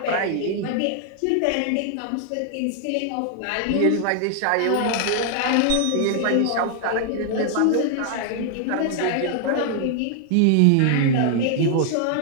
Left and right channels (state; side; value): different; both; correlation 0.00